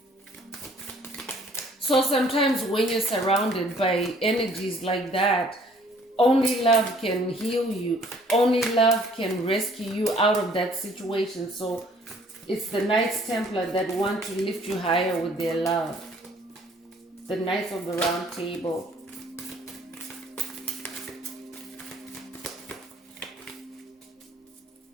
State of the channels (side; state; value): both; normal; correlation 0.58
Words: So sometimes when you're surrounded by energies like that, only love can heal you. Only love can rescue you out of that situation. So it's the Knights Templar that want to lift you higher with their love. The Knights of the Round Table.